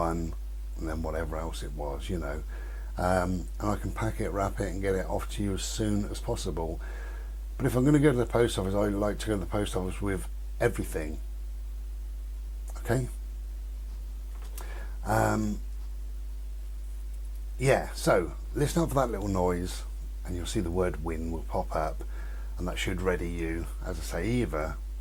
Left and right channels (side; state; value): both; identical; correlation 1.00